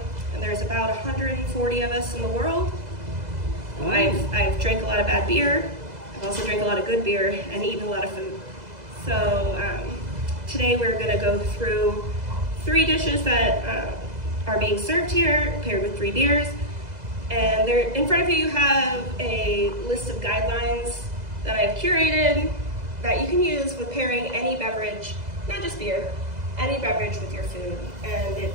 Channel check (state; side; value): late; left; 2.0 ms